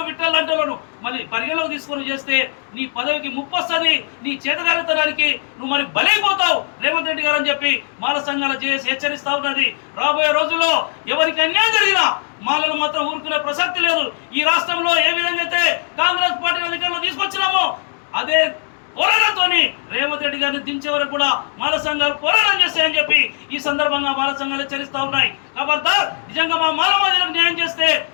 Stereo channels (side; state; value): right; silent; digital silence